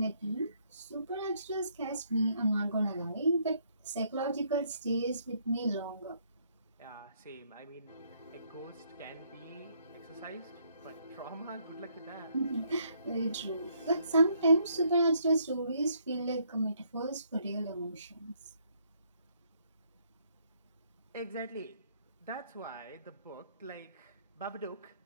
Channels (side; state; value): both; inverted; correlation -0.69